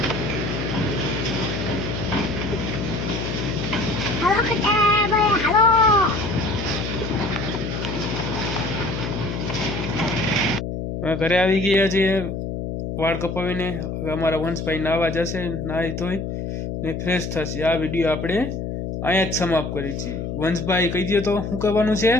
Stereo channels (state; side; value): noise; left; hum, 4 dB below the sound